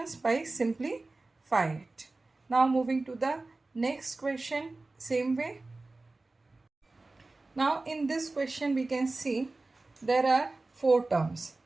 by simplify it. Now moving to the next question, same way. Now in this question we can see there are 4 terms.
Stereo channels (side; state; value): left; quieter; 3.3 dB